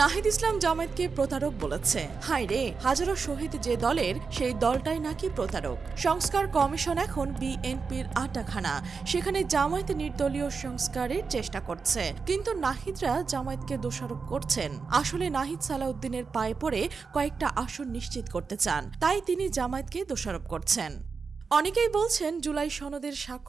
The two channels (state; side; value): quieter; left; 5.0 dB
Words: ইসলাম জামায়াতকে প্রতারক বলেছে। হায় রে, হাজারো শহীদ যে দলের, সেই দলটাই নাকি প্রতারক। সংস্কার কমিশন এখন বিএনপির আটাখানা, সেখানে জামায়াত নির্দলীয় সংস্কারের চেষ্টা করছে, কিন্তু নাহিদরা জামায়াতকে দোষারোপ করছেন। আসলে নাহিদ সালাউদ্দিনের পায়ে পড়ে কয়েকটা আসন নিশ্চিত করতে চান, তাই তিনি জামায়াতকে দোষারোপ করছেন। অনেকেই বলছেন জুলাই সনদের